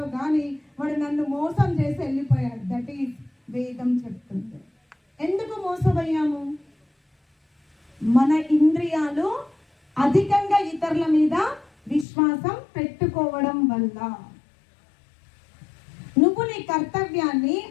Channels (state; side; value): drops out; right; at 12.1 s